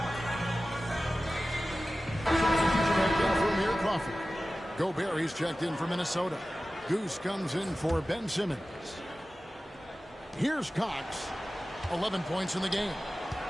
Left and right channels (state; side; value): normal; both; correlation 0.95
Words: Gobert, he's checked in for Minnesota. Goose comes in for Ben Simmons. Here's Cox. 11 points in the game.